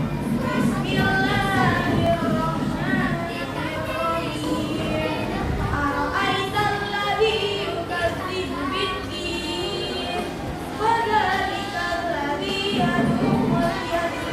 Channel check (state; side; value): identical; both; correlation 1.00